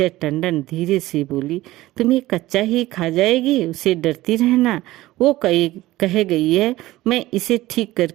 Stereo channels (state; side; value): quieter; left; 17.1 dB